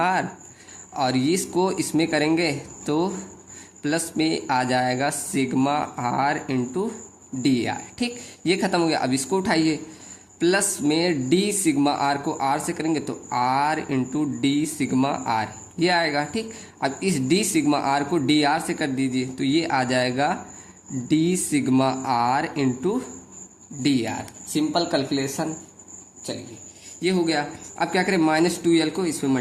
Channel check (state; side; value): identical; both; correlation 1.00